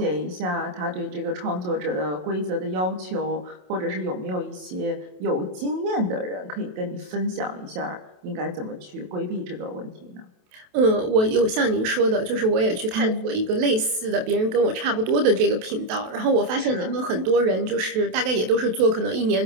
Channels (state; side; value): late; left; 27 ms